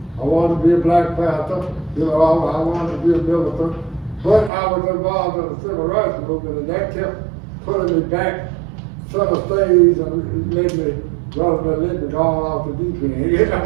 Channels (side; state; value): left; drops out; at 4.5 s